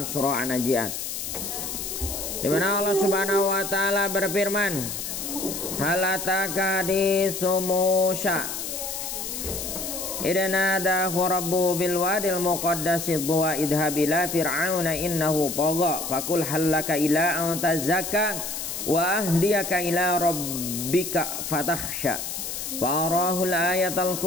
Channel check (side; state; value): left; noise; hiss, 5 dB below the sound